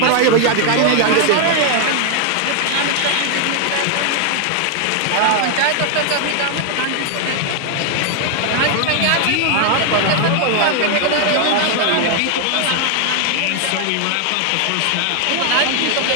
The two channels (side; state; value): both; different; correlation 0.00